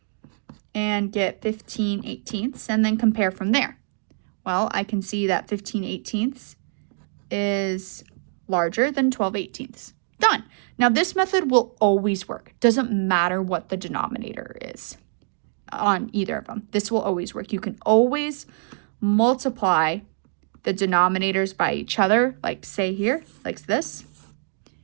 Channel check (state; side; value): silent; left; 62 dB below the other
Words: and get 15/18, and then compare from there. Well, I can see that 15/18 is larger than 12/18. Done. Now this method will always work. Doesn't matter what the denominator is on either of them. This will always work. You can always multiply the denominators by each other, like say here, like this,